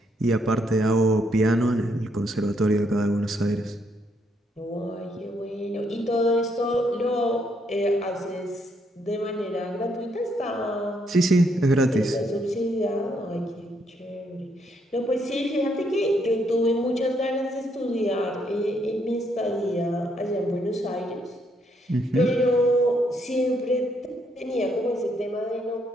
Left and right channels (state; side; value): normal; both; correlation 0.74